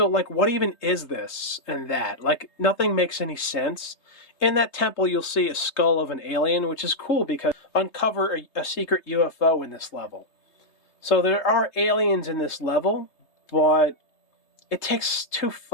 like, what even is this and that? Like, nothing makes any sense. In that temple, you'll see a skull of an alien, which is cool because uncover a secret UFO in this level. So there are aliens in this level, but it takes too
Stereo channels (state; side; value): late; right; 3.2 ms